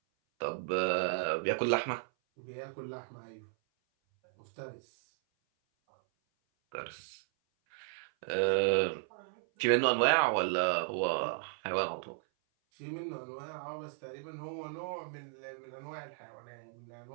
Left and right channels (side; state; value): left; silent; 55 dB below the other